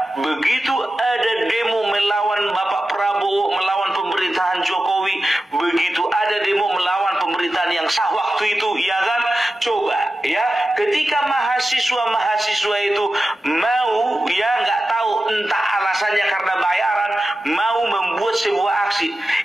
begitu ada demo melawan Bapak Prabowo, melawan pemerintahan Jokowi, begitu ada demo melawan pemerintahan yang sah waktu itu, ya kan, coba ya, ketika mahasiswa itu mau, ya, nggak tahu entah alasannya karena bayaran, mau membuat sebuah aksi,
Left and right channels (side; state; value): both; normal; correlation 0.93